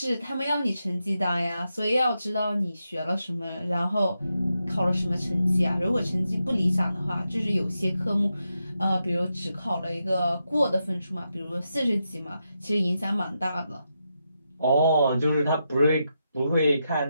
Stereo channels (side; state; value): both; inverted; correlation -0.86